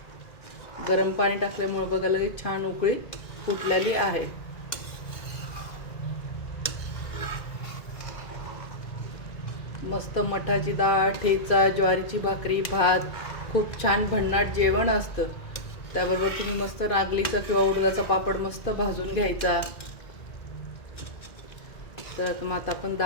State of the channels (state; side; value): late; right; 2.0 ms